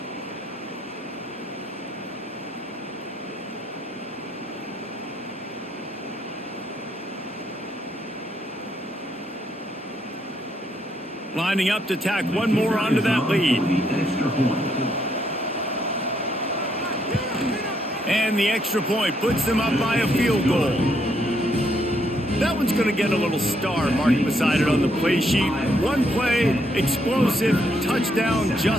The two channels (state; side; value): normal; both; correlation 0.74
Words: Lining up to tack one more onto that lead. And the extra point puts them up by a field goal. That one's going to get a little star marked beside it on the play sheet. One play, explosive, touchdown